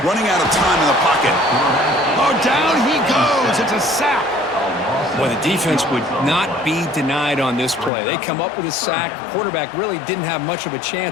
Running out of time in the pocket. Oh, down he goes. It's a sack. Well, the defense would not be denied on this play. They come up with a sack. Quarterback really didn't have much of a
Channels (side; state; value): right; drops out; at 7.9 s